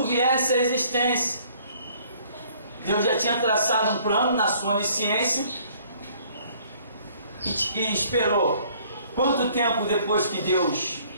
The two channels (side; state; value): both; inverted; correlation -0.59